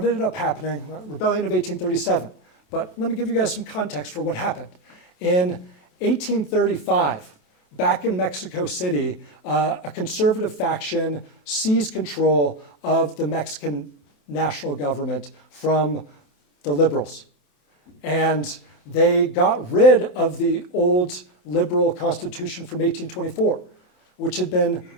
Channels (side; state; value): right; late; 27 ms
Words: ended up happening, Rebellion of 1837. But let me give you guys some context for what happened. In 1835, back in Mexico City, a conservative faction seized control of the Mexican national government from the liberals. And they got rid of the old liberal constitution from 1824, which had been